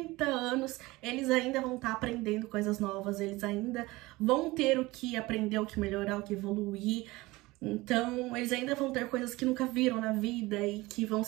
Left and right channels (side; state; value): left; quieter; 20.8 dB